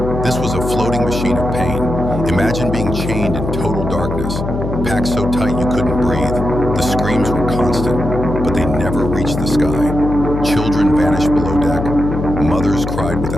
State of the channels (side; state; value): left; noise; hum, 4 dB below the sound